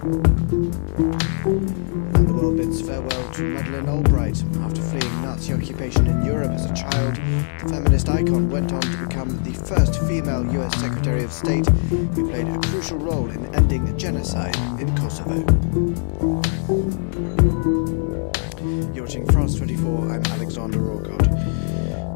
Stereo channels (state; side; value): silent; right; digital silence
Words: And the world bids farewell to Madeleine Albright. After fleeing Nazi occupation in Europe as a child, the feminist icon went on to become the first female US Secretary of State who played a crucial role in ending genocide in Kosovo. You're watching France 24, I'm Alexander Orgod.